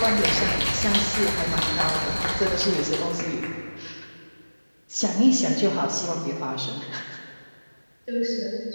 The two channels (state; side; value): inverted; both; correlation -1.00